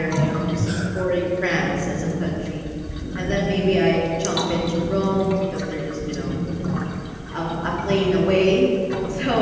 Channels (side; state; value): both; identical; correlation 1.00